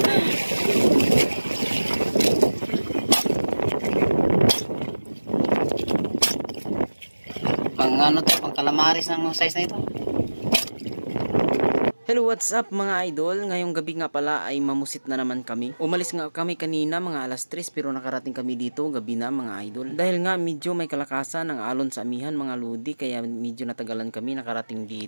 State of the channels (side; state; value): both; inverted; correlation -1.00